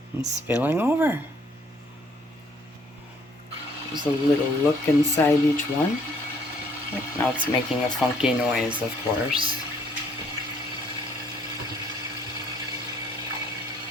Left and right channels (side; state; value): both; normal; correlation 0.63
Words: and spilling over. There's a little look inside each one. Now it's making a funky noise, of course.